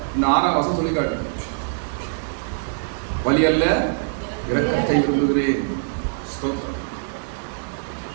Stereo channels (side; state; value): left; silent; digital silence